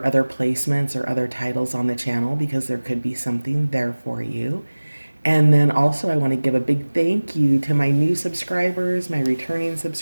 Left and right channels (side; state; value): both; inverted; correlation -1.00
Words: other placements or other titles on the channel because there could be something there for you. And then also, I want to give a big thank you to my new subscribers, my returning